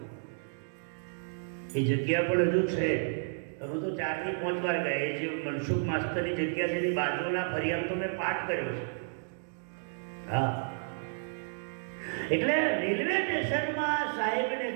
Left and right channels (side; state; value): left; silent; digital silence